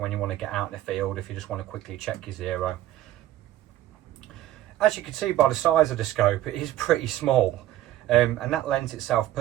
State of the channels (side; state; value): left; quieter; 13.8 dB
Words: when you want to get out in the field, if you just want to quickly check your zero. As you can see by the size of the scope, it is pretty small, and that lends itself